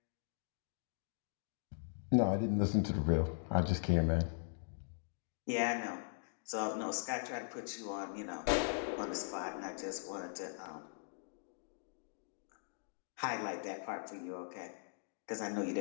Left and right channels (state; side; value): silent; right; digital silence